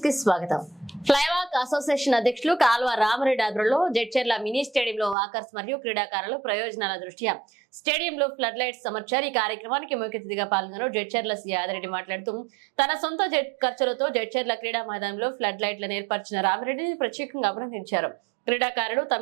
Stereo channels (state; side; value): drops out; left; at 5.2 s